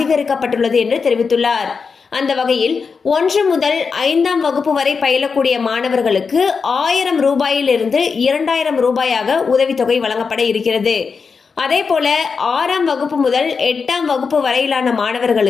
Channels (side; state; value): right; quieter; 5.3 dB